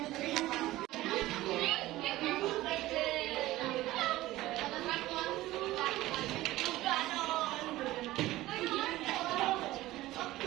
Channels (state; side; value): quieter; left; 16.9 dB